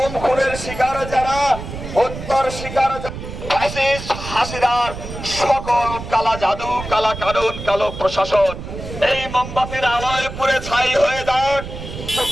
খুনের শিকার যারা, হত্যার শিকার হাসিনার সকল কালা জাদু, কালা কানুন, কালো প্রশাসন এই মোমবাতির আলোয় পুড়ে ছাই হয়ে যাক।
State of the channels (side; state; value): right; noise; rumble, 10 dB below the sound